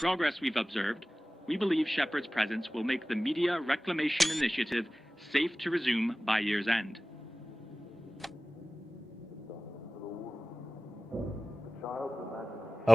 we've observed, we believe Shepherd's presence will make the Media Reclamation Initiative safe to resume by year's end.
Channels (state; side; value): normal; both; correlation 0.97